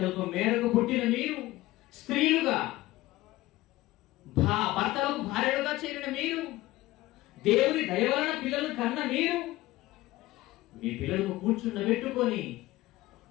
మేరకు పుట్టిన మీరు, స్త్రీలుగా భర్తలకు భార్యలుగా చేరిన మీరు, దేవుని దయ వలన పిల్లలు కన్న మీరు, మీ పిల్లలకు కూర్చుండబెట్టుకొని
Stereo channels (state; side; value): quieter; right; 17.7 dB